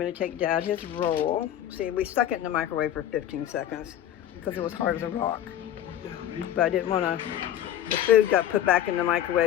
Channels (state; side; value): quieter; right; 11.2 dB